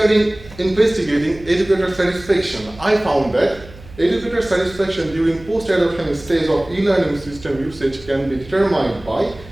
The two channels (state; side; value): noise; right; hum, 19 dB below the sound